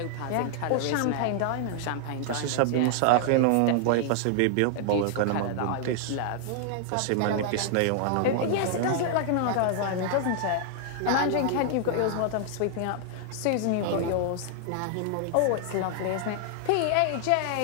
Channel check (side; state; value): both; different; correlation -0.01